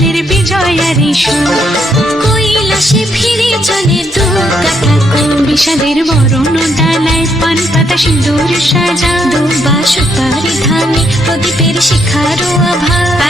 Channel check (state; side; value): normal; both; correlation 0.74